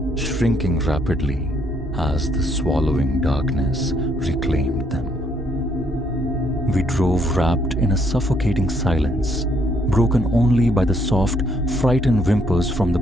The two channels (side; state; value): both; normal; correlation 0.70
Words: shrinking rapidly as the swallowing darkness reclaimed them. We drove wrapped in a suffocating silence, broken only by the soft, frightened whimpers from the